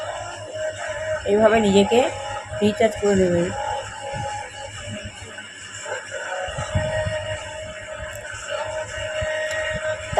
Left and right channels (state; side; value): identical; both; correlation 1.00